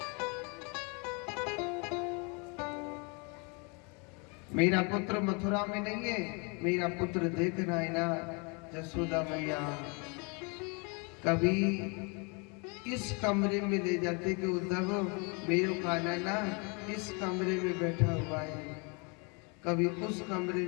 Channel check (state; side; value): quieter; right; 32.6 dB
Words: मेरा पुत्र मथुरा में नहीं है, मेरा पुत्र देखना है ना जसोदा मैया, कभी इस कमरे में ले जाते कि उद्धव मेरे खाना ना इस कमरे में बैठा हुआ है, कभी उस कमरे